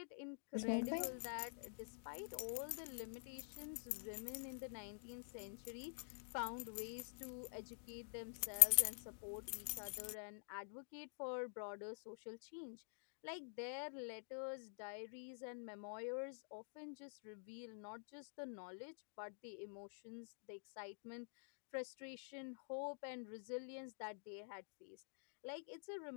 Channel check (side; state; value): right; silent; digital silence